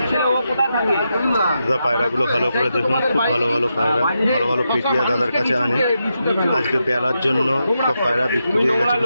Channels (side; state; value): both; inverted; correlation -0.86